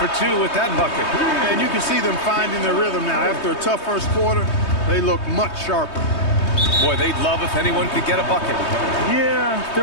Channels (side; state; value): right; late; 3.2 ms